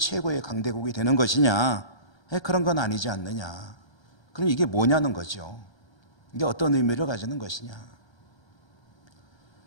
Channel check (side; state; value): right; late; 1.3 ms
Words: 강대국이 되는 것이냐? 그런 건 아니지 않느냐? 그럼 이게 뭐냐는 거죠. 이게 어떤 의미를 가지는 것이냐?